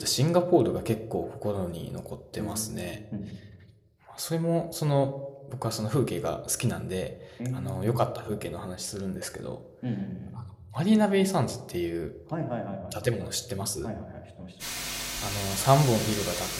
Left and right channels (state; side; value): identical; both; correlation 1.00